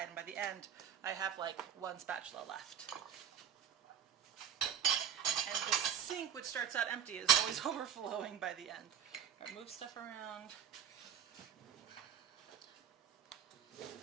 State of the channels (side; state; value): left; quieter; 8.7 dB